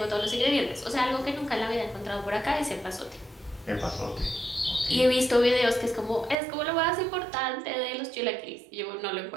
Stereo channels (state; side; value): drops out; left; at 6.4 s